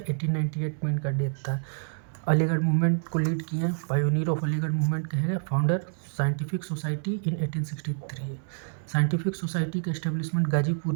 में इनका डेथ था। अलीगढ़ मूवमेंट को लीड किए हैं। पायोनियर ऑफ अलीगढ़ मूवमेंट कहे गए। Founder scientific society in 1863। Scientific society का एस्टेब्लिशमेंट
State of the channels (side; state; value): left; silent; 60 dB below the other